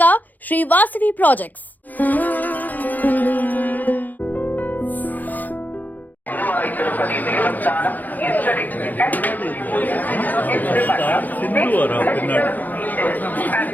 శ్రీ వాసవి ప్రాజెక్ట్స్.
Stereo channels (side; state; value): right; late; 0.083 ms